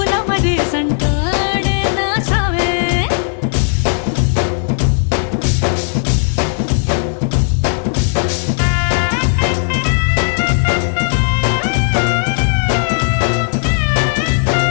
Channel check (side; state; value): right; silent; 57 dB below the other